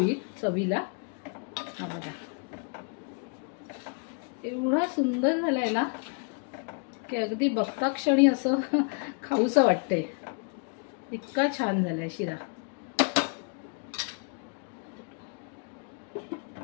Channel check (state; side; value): quieter; right; 38.5 dB